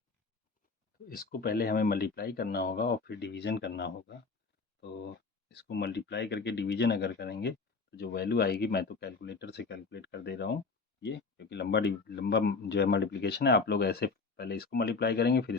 तो इसको पहले हमें मल्टीप्लाई करना होगा और फिर डिवीजन करना होगा। तो इसको मल्टीप्लाई करके डिवीजन अगर करेंगे तो जो वैल्यू आएगी, मैं तो कैलकुलेटर से कैलकुलेट कर दे रहा हूँ ये, क्योंकि लंबा जो है मल्टीप्लिकेशन है। आप लोग ऐसे पहले इसको मल्टीप्लाई करेंगे फिर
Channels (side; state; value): right; quieter; 4.4 dB